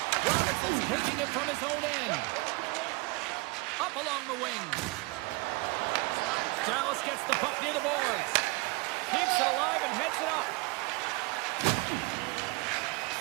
Robertson's taking it from his own end. Up along the wing. Dallas gets the puck near the boards. Keeps it alive and heads it up.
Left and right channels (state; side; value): quieter; left; 26.3 dB